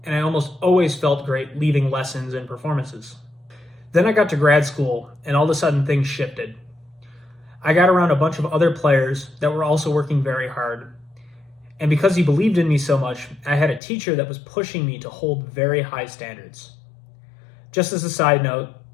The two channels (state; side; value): drops out; right; at 13.8 s